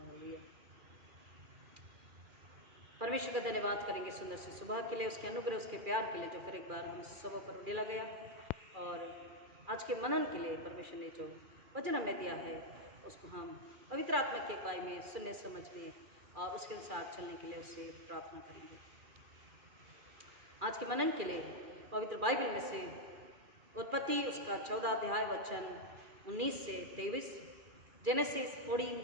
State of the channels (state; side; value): late; left; 2.4 ms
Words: परमेश्वर का धन्यवाद करेंगे सुंदर सी सुबह के लिए, उसके अनुग्रह, उसके प्यार के लिए जो फिर एक बार हम सब पर उड़ेला गया, और आज के मनन के लिए परमेश्वर ने जो वचन हमें दिया है उसको हम पवित्र आत्मा की अगुवाई में सुनने समझने और उसके अनुसार चलने के लिए उससे प्रार्थना करेंगे। आज के मनन के लिए पवित्र बाइबल में से उत्पत्ति उसका 14 अध्याय वचन 19 से 23, जेनेसिस